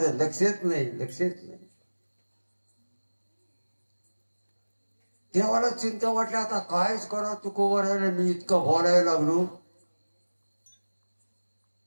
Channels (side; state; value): both; inverted; correlation -1.00